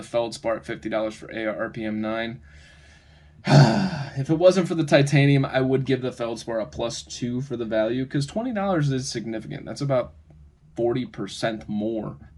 Feldspar at $50 for AR-RPM 9. If it wasn't for the titanium, I would give the Feldspar a +2 for the value, because $20 is significant. That's about 40% more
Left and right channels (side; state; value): both; identical; correlation 1.00